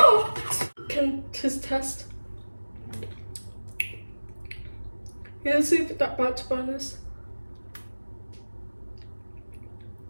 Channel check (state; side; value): inverted; both; correlation -1.00